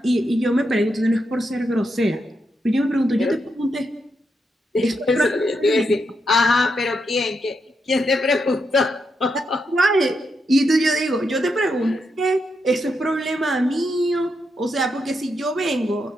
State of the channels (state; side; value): normal; both; correlation 0.83